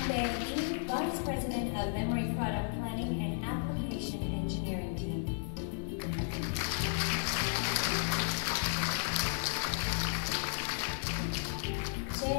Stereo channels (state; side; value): silent; right; digital silence